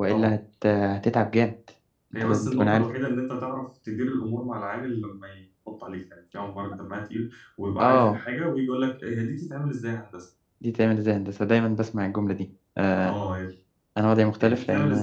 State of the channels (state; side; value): identical; both; correlation 1.00